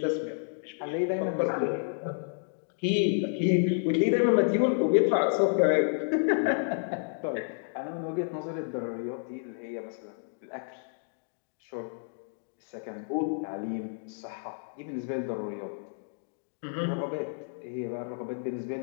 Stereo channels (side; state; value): right; silent; digital silence